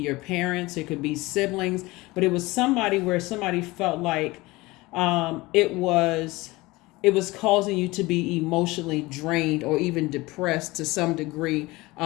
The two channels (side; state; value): right; quieter; 21.2 dB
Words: parents, it could be siblings, but it was somebody where somebody felt like it was causing you to be emotionally drained or even depressed to some degree,